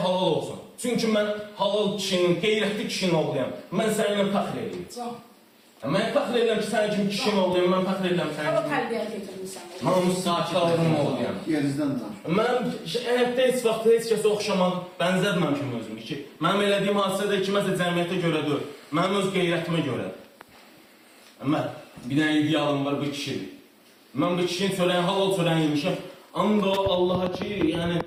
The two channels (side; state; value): both; identical; correlation 1.00